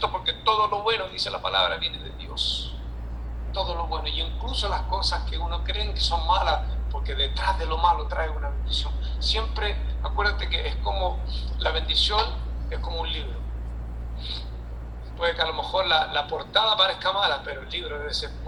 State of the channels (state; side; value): identical; both; correlation 1.00